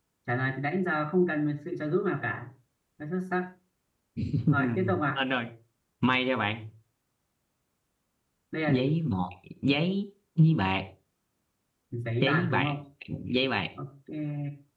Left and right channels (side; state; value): both; identical; correlation 1.00